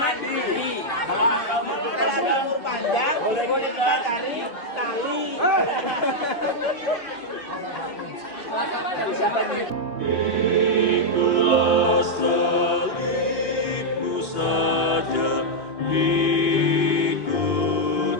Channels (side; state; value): right; late; 2.8 ms